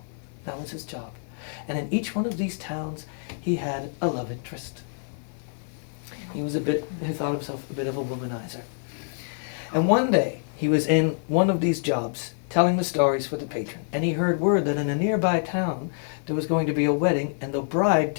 That was his job. And in each one of these towns, he had a love interest. He thought himself a bit of a womanizer. And one day, he was in one of these jobs, telling the stories for the patron, and he heard word that in a nearby town, there was going to be a wedding, and the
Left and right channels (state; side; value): silent; right; digital silence